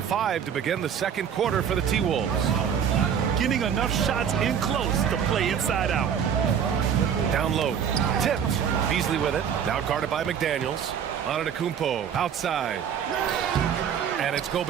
to begin the second quarter for the T-Wolves. Getting enough shots in close to play inside out. Down low. Tipped. Beasley with it. Now guarded by McDaniels. Antetokounmpo outside. And it's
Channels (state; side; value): quieter; left; 8.1 dB